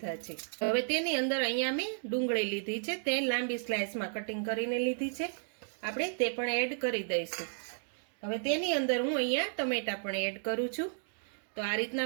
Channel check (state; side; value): silent; left; digital silence